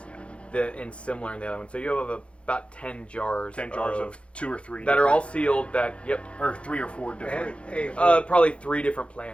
and similar in the other one. So you have about 10 jars. 10 jars of 2 or 3 that are all different- sealed. That or 3 or 4 different. Hey, probably 3 different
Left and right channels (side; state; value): right; late; 0.060 ms